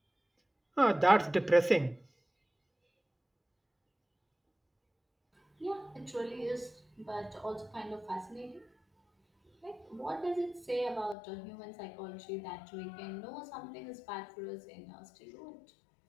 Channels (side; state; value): right; drops out; at 11.2 s